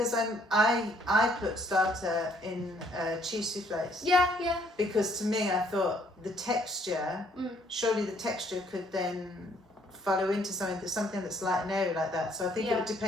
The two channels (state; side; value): normal; both; correlation 0.65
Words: I put starter in cheese soufflés. Yeah. Because to me, I thought the texture, surely the texture could then follow into something that's light and airy like that. So I think it would